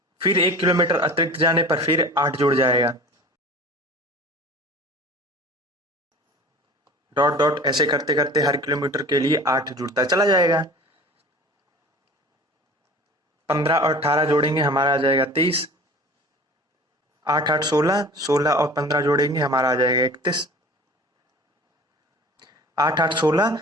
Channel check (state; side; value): normal; both; correlation 0.41